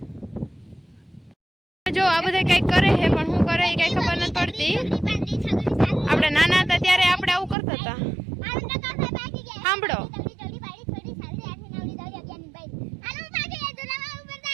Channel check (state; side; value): drops out; left; at 7.6 s